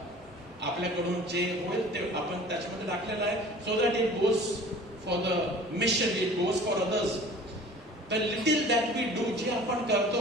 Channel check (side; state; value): both; normal; correlation 0.45